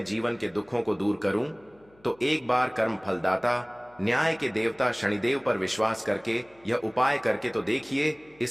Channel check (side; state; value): left; noise; hum, 30 dB below the sound